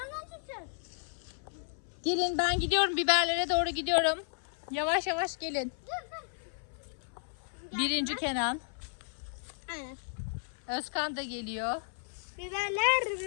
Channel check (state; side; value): silent; right; 55 dB below the other